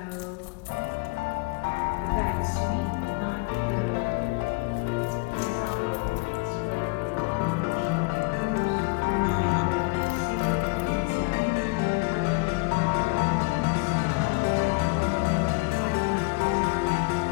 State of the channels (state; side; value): quieter; right; 28.8 dB